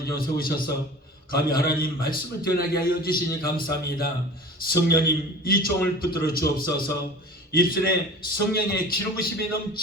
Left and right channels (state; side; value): normal; both; correlation 0.39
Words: 좀 세우셔서 감히 하나님 말씀을 전하게 하여 주시니 감사합니다. 성령님 이 종을 붙들어 주옵소서. 입술에 성령의 기름부심이